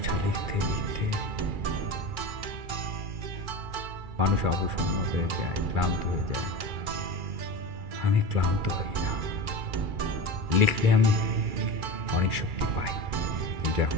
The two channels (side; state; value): left; late; 2.4 ms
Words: লিখতে লিখতে মানুষ অবসন্ন হয়ে যায়, ক্লান্ত হয়ে যায়। আমি ক্লান্ত হই না। লিখলে আমি অনেক শক্তি পাই, কিন্তু এখন